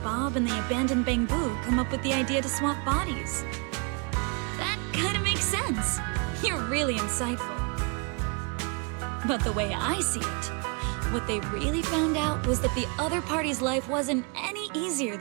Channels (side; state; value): left; quieter; 34.3 dB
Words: Bob and the abandoned Bangbu come up with the idea to swap bodies. That kinda makes sense. You're really insightful. But the way I see it, what they really found out was that the other party's life wasn't any easier